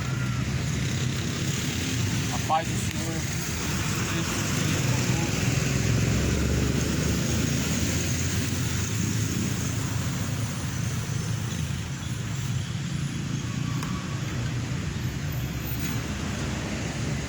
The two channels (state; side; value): identical; both; correlation 1.00